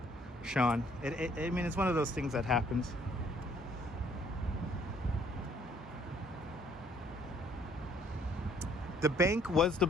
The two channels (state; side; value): normal; both; correlation 0.62